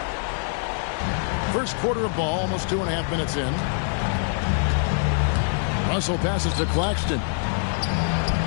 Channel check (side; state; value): right; silent; 62 dB below the other